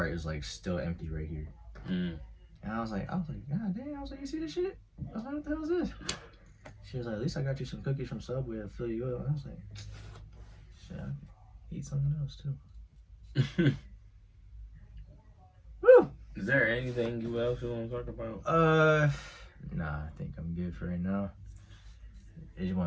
is, like, still empty right here. And I was like, God damn, I was like, you see this shit? I was like, what the hell is this? She was like, at least I got you some cookies from Subway to fill you up. And I was like, shit, I can eat something else too. Woo! Is there anything else you want to talk about? Nah, I think I'm good for right now. Did you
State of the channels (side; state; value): both; identical; correlation 1.00